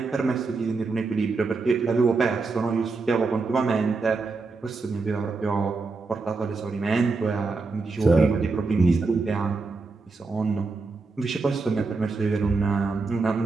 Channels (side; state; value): left; quieter; 4.0 dB